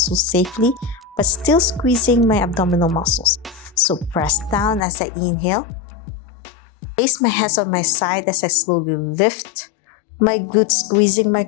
safely, but still squeezing my abdominal muscles. So press down as I inhale. Place my hands on my side as I slowly lift my glutes, squeezing my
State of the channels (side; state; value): right; drops out; at 4.9 s